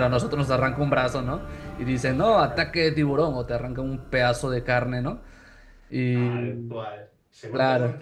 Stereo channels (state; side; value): identical; both; correlation 1.00